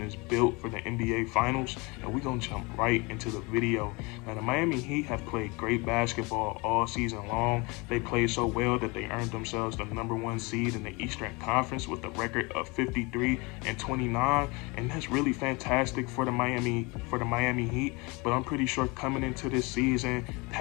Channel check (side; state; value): right; quieter; 27.0 dB